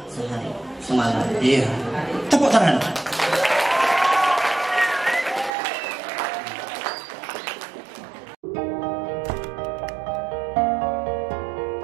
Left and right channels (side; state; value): left; drops out; at 5.5 s